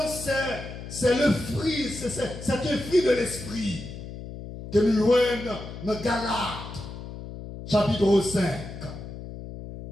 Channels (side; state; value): left; noise; hum, 11 dB below the sound